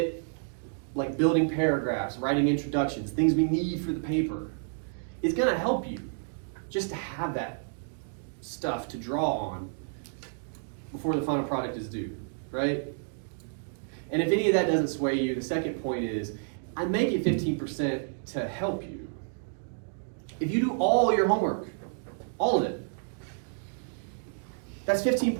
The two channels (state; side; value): silent; left; digital silence